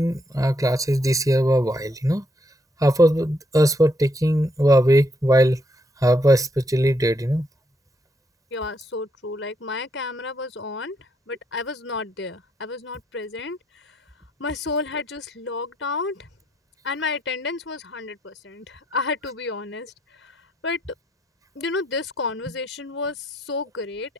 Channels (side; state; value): both; normal; correlation 0.75